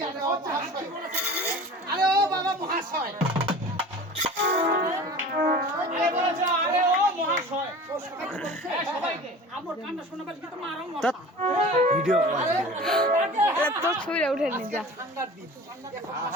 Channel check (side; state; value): both; normal; correlation 0.39